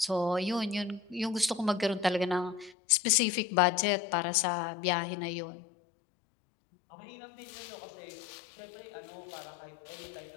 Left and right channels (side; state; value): right; drops out; at 2.8 s